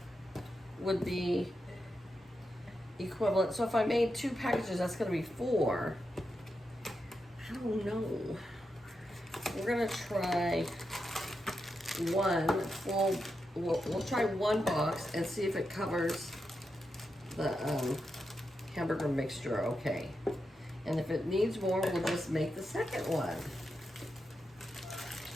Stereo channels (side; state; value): both; normal; correlation 0.87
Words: would be equivalent. So if I made 2 packages, that's gonna be 4. I don't know. We're gonna try one full, we'll try 1 box and see if it covers the hamburger mixture okay. And if it needs more, we'll just make the second one.